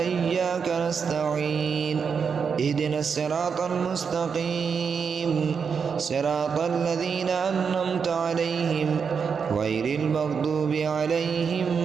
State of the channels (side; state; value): left; quieter; 6.2 dB